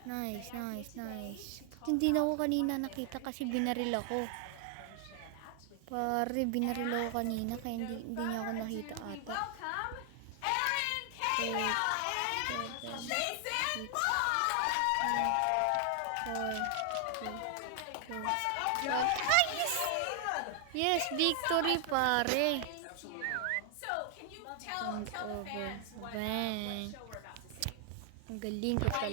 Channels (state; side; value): different; both; correlation 0.00